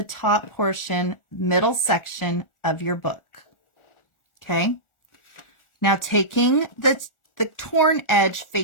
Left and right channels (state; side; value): late; right; 1.4 ms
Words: top portion, middle section of your book. Okay. Now taking the torn edge